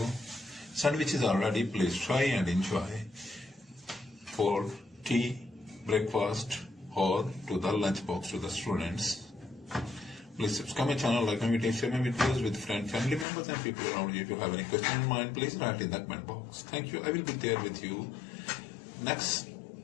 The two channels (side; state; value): right; drops out; at 13.2 s